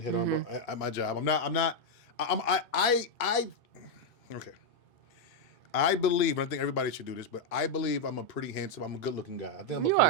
hit on at my job. Okay. I believe, and I think everybody should do this, but I believe I'm a pretty handsome, I'm a good-looking guy. I think I'm a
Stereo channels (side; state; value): both; normal; correlation 0.00